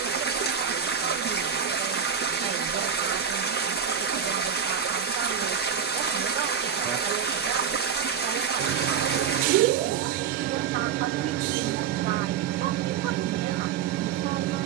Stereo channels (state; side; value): quieter; left; 7.7 dB